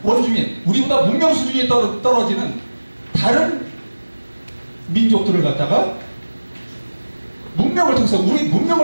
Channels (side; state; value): both; inverted; correlation -1.00